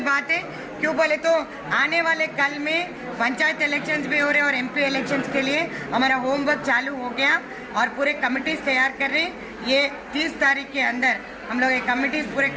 बात है। क्यों बोले तो आने वाले कल में पंचायत इलेक्शंस भी हो रहे हैं और एमपी इलेक्शंस के लिए हमारा होमवर्क चालू हो गया और पूरे कमिटीज तैयार कर रहे हैं। ये 30 तारीख के अंदर हम लोग ये कमिटीज पूरे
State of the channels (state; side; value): identical; both; correlation 1.00